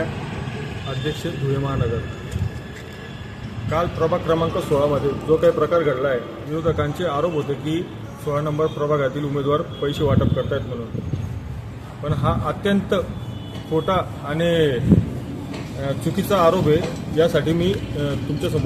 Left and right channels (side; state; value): both; identical; correlation 1.00